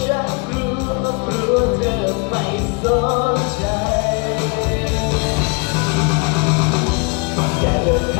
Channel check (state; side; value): quieter; right; 31.9 dB